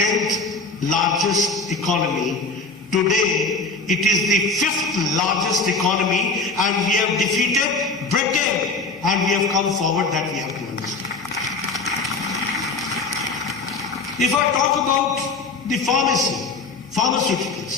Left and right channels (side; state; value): right; quieter; 3.9 dB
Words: largest economy, today it is the 5th largest economy, and we have defeated Britain, and we have come forward. That we have to understand. If I talk about the